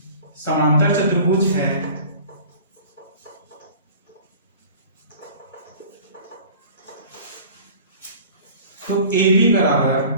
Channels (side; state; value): both; inverted; correlation -0.44